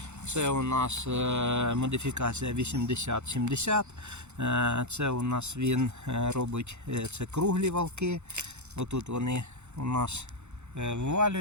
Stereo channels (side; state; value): left; late; 0.83 ms